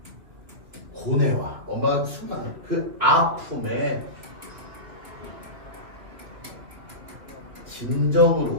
고뇌와 엄마가 수많은 그 아픔에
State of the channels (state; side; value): late; left; 2.3 ms